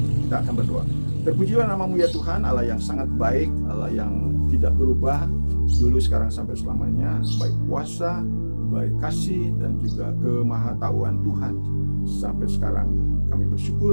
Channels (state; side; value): inverted; both; correlation -1.00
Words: Kita akan berdoa. Terpujilah namamu ya Tuhan, Allah yang sangat baik, Allah yang tidak berubah, dulu, sekarang, sampai selamanya. Baik kuasa, baik kasih, dan juga kemahatauan Tuhan. Sampai sekarang kami